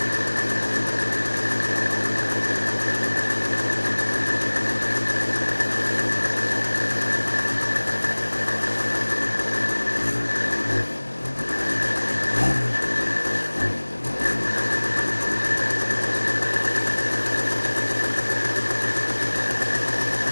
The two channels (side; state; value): both; inverted; correlation -1.00